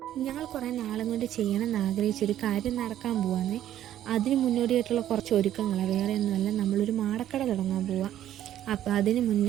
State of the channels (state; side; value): quieter; left; 11.8 dB